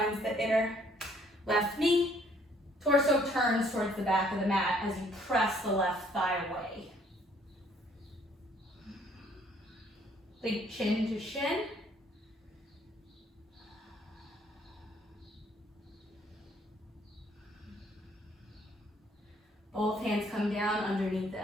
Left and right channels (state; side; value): normal; both; correlation 0.63